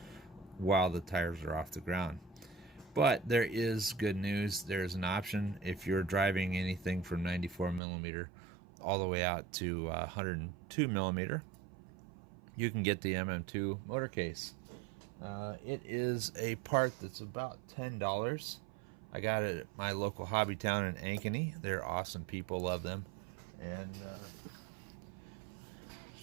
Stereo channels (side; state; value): left; drops out; at 7.8 s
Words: while the tires are off the ground. But there is good news. There's an option if you're driving anything from 94 millimeter all the way out to 102 millimeter. You can get the MM2 motor case. It is a part that's about $10. I got it at my local hobby town in Ankeny. They're awesome people, love them. And